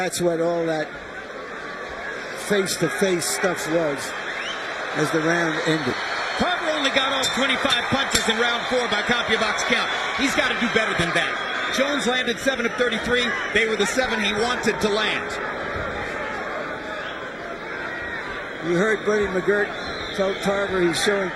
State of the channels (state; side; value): identical; both; correlation 1.00